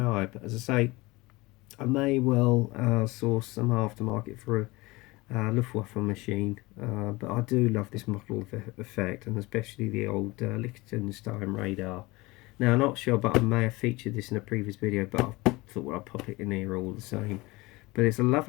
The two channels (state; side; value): quieter; right; 22.3 dB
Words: eye. But as I say, I may well source some aftermarket for a Luftwaffe machine, but I do love this model effect, and especially the old Liechtenstein radar. Now, I'm not sure, but I may have featured this in a previous video, but I thought, well, I'll pop it in here all the same. But it's a